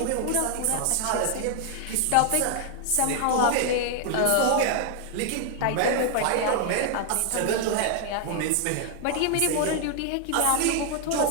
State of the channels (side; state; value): both; different; correlation 0.00